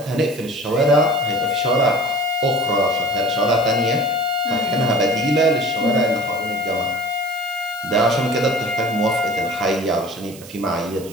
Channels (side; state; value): right; noise; hiss, 18 dB below the sound